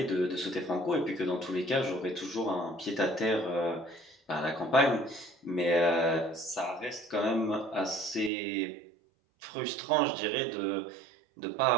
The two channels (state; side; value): drops out; left; at 8.3 s